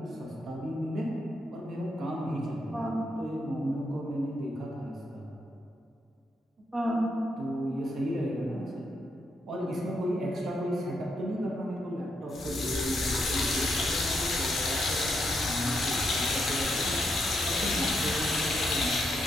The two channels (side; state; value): both; normal; correlation 0.80